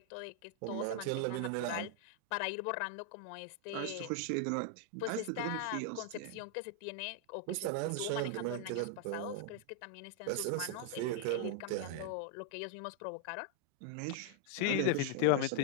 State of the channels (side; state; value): both; different; correlation 0.00